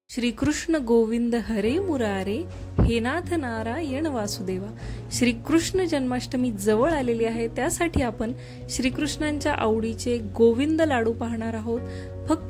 श्रीकृष्ण गोविंद हरे मुरारे, हे नाथ नारायण वासुदेवा। श्रीकृष्ण जन्माष्टमी जवळ आलेली आहे, त्यासाठी आपण श्रीकृष्णांच्या आवडीचे गोविंद लाडू पाहणार आहोत।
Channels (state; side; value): identical; both; correlation 1.00